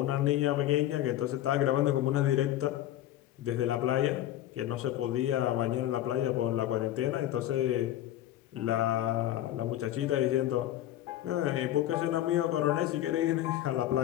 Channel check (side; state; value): right; quieter; 13.2 dB